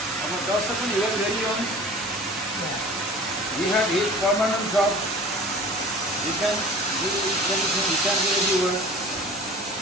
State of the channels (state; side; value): normal; both; correlation 0.42